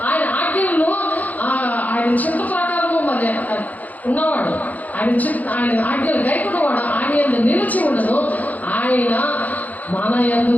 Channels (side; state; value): right; late; 0.078 ms